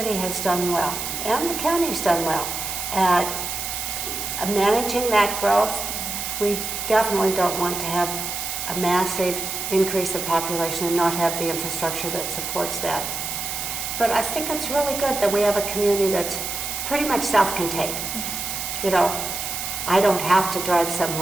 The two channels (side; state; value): right; noise; hiss, 4 dB below the sound